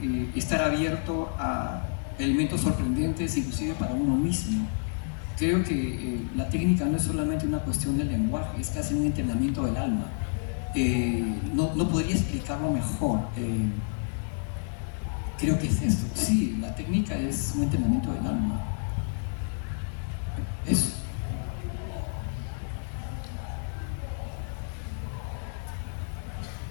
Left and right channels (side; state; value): right; silent; 59 dB below the other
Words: estar abierto a elementos sorprendentes, inclusive para uno mismo. Creo que la técnica no es solamente una cuestión del lenguaje, es casi un entrenamiento del alma. No podría explicarlo mejor. Creo que es esto. Sí, la técnica es un entrenamiento del alma. Eso.